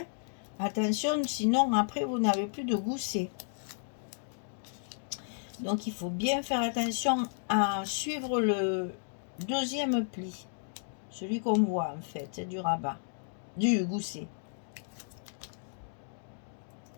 Attention, sinon après vous n'avez plus de gousset. Donc il faut bien faire attention à suivre le deuxième pli. Celui qu'on voit en fait, du rabat, du gousset.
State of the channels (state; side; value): silent; right; digital silence